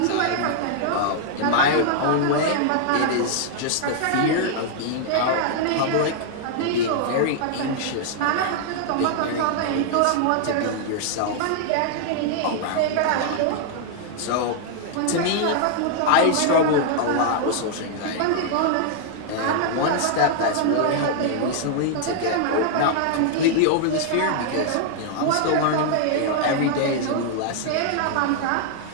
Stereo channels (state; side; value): different; both; correlation -0.01